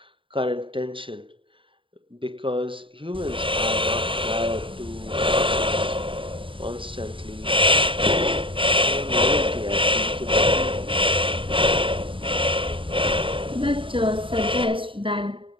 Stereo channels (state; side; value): late; left; 0.25 ms